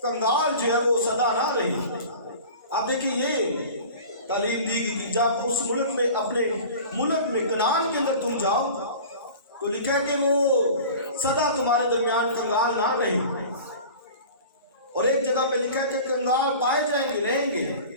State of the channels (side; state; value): both; inverted; correlation -0.39